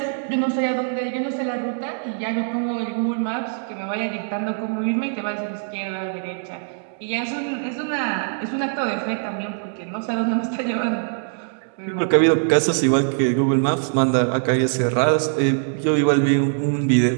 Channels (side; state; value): left; silent; digital silence